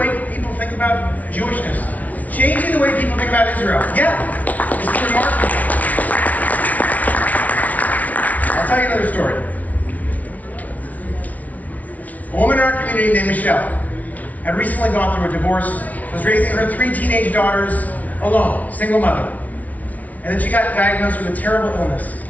people think about Jewishness, changing the way people think about Israel. Yeah, it's remarkable. I'll tell you another story. A woman in our community named Michelle had recently gone through a divorce, was raising her 3 teenage daughters alone, single mother. And then she got diagnosed with a terrible illness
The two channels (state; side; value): late; right; 0.072 ms